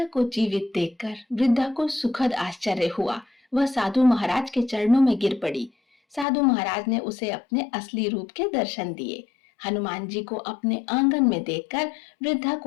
को जीवित देखकर वृद्धा को सुखद आश्चर्य हुआ। वह साधु महाराज के चरणों में गिर पड़ी। साधु महाराज ने उसे अपने असली रूप के दर्शन दिए। हनुमान जी को अपने आंगन में देखकर वृद्धा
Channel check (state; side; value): drops out; right; at 6.2 s